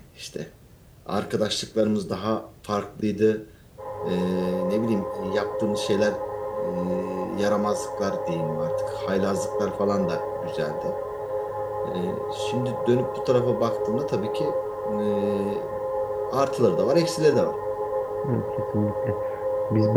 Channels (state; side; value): identical; both; correlation 1.00